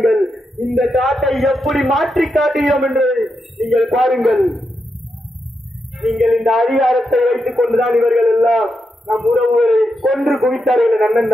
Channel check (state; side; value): normal; both; correlation 0.85